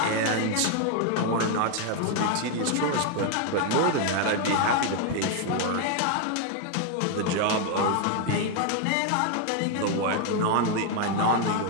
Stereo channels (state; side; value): different; both; correlation 0.01